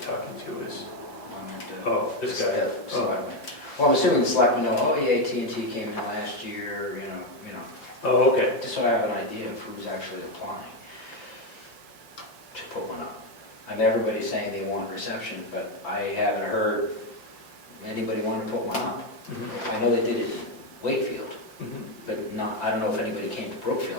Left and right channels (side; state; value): right; late; 6.0 ms